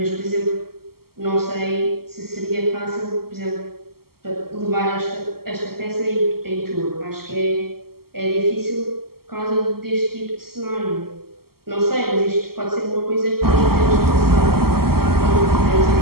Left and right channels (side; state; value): left; late; 0.94 ms